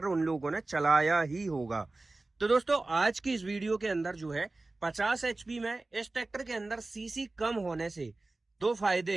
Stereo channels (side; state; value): left; quieter; 3.1 dB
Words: उन लोगों ने चलाया ही होगा। तो दोस्तों, आज की इस वीडियो के अंदर जो है 50 एचपी में इस ट्रैक्टर के अंदर सीसी कम होने से दो फायदे